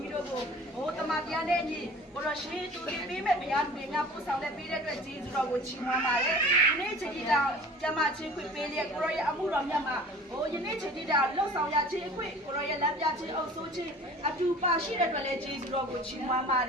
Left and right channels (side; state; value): both; normal; correlation 0.44